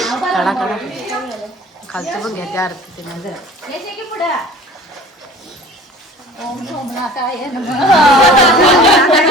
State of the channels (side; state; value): both; normal; correlation 0.44